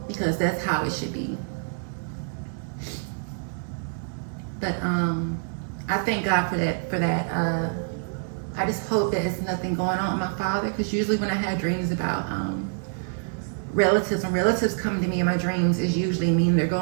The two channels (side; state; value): left; silent; 61 dB below the other